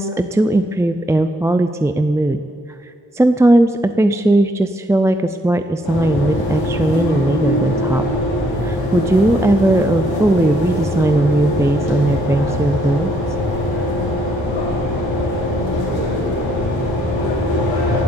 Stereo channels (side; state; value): both; normal; correlation 0.71